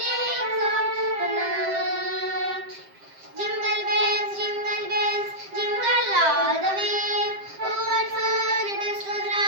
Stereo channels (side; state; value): left; late; 7.6 ms